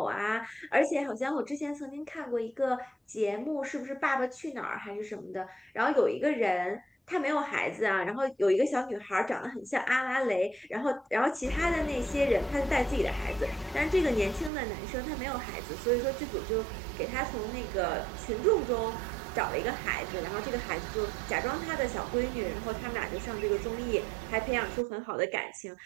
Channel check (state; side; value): drops out; left; at 14.5 s